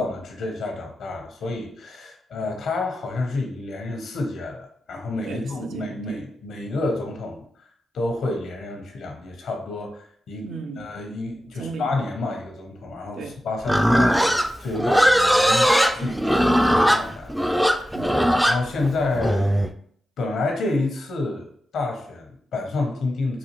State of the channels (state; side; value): normal; both; correlation 0.91